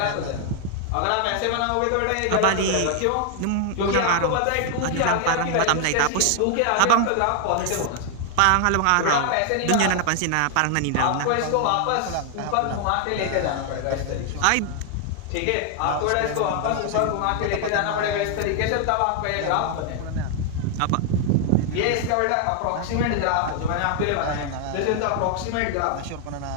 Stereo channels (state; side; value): different; both; correlation 0.00